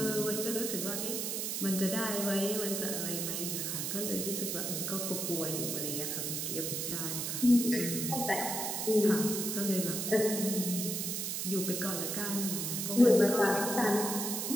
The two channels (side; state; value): right; noise; hiss, 2 dB below the sound